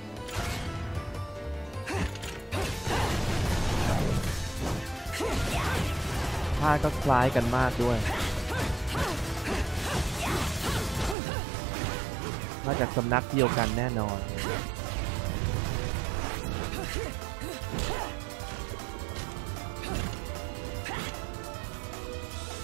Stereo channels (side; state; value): left; drops out; at 11.2 s